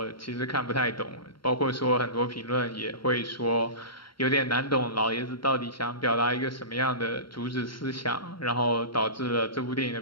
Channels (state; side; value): late; right; 0.73 ms